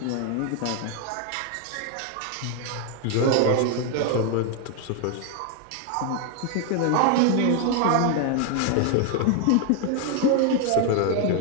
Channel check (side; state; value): both; different; correlation 0.01